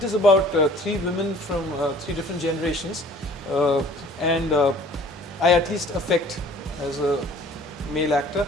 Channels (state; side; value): normal; both; correlation 0.52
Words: is about 3 women from 3 different generations, and I at least affect as a male actor